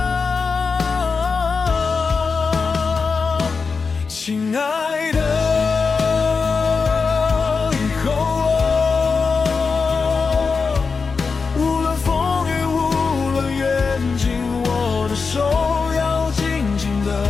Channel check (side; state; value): right; quieter; 4.9 dB